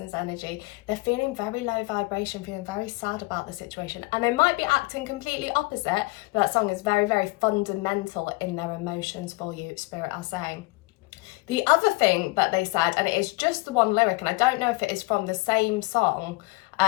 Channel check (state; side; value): quieter; right; 23.6 dB